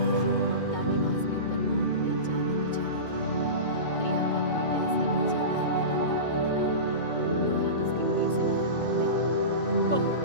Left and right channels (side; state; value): right; late; 2.2 ms